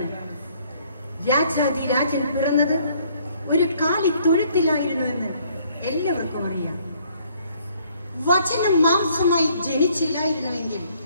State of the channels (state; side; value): inverted; both; correlation -0.63